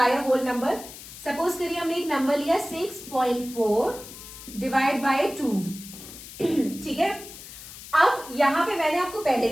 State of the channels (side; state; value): left; noise; hiss, 15 dB below the sound